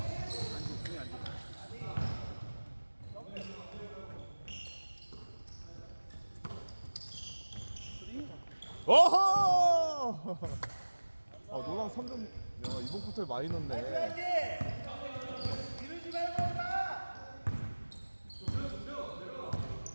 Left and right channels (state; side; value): inverted; both; correlation -1.00